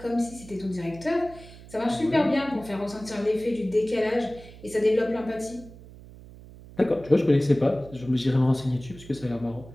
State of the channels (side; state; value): right; noise; hum, 18 dB below the sound